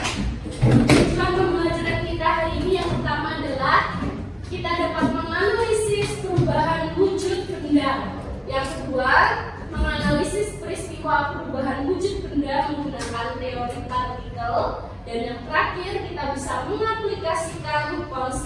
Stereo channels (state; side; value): identical; both; correlation 1.00